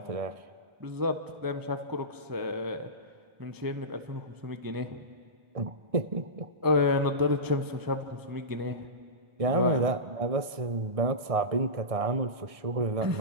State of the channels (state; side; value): late; left; 1.6 ms